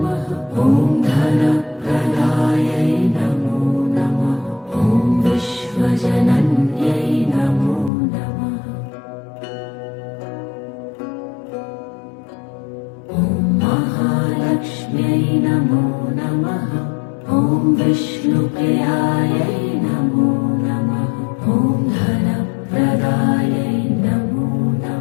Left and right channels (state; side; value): drops out; right; at 7.9 s